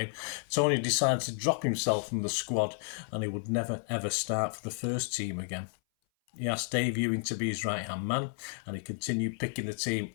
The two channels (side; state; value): right; silent; 57 dB below the other